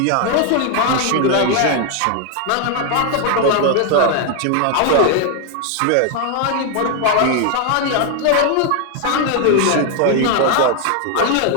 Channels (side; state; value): both; different; correlation 0.00